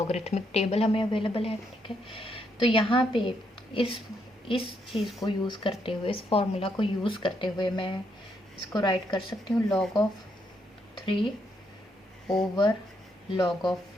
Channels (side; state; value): both; normal; correlation 0.76